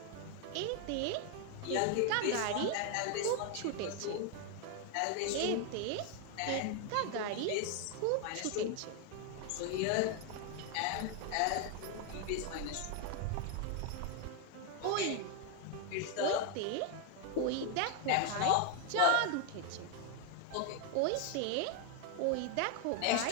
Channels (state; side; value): different; both; correlation 0.01